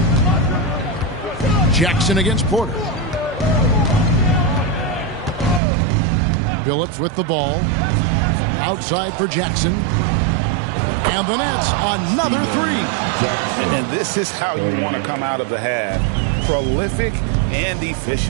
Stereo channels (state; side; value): drops out; left; at 5.6 s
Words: Jackson against Porter. Billups with the ball. Outside for Jackson. And the Nets, another 3. And this is how you want to come out of the half. Prolific and